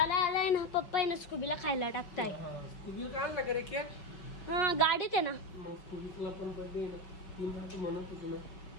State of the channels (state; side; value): late; right; 5.5 ms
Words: ना पप्पा आहे ना स्कूबीला खायला टाकताय. हा गाडीत आहे ना.